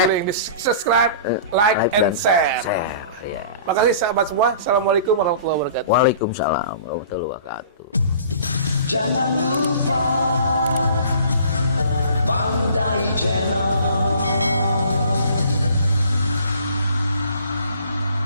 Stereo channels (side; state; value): both; inverted; correlation -0.47